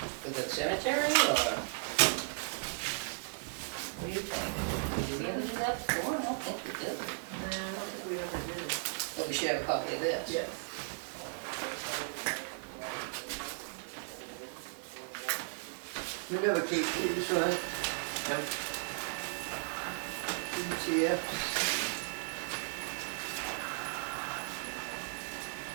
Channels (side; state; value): left; silent; digital silence